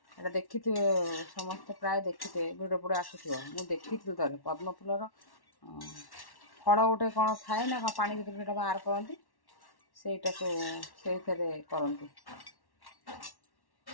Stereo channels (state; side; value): late; right; 1.1 ms